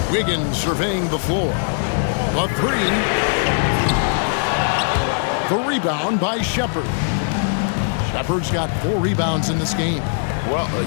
Wiggins surveying the floor. The three. The rebound by Shepherd. Shepherd's got 4 rebounds in this game.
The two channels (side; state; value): right; silent; digital silence